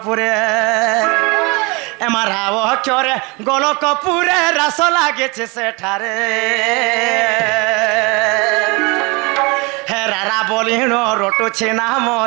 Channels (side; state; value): left; quieter; 27.8 dB